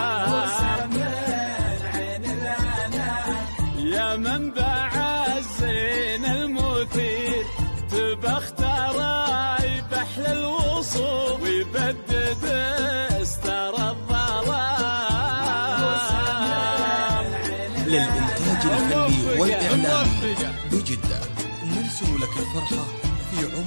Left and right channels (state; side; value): inverted; both; correlation -1.00